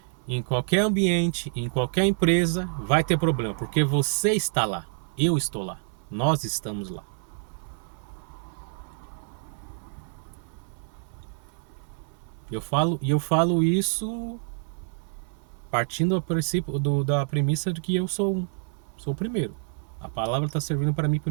em qualquer ambiente, em qualquer empresa, vai ter problema, porque você está lá, eu estou lá, nós estamos lá. Eu falo isso partindo da premissa de que eu sou o primeiro. A palavra está servindo para mim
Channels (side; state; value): left; silent; 59 dB below the other